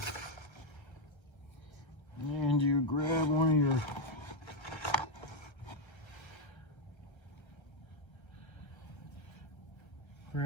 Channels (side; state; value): right; late; 1.3 ms